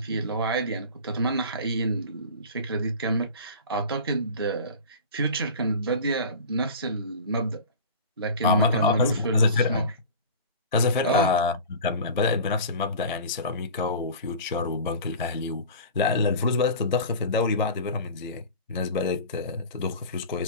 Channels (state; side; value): inverted; both; correlation -0.36